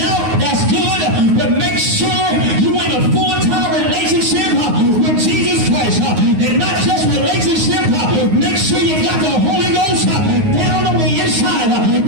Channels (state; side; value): late; left; 9.5 ms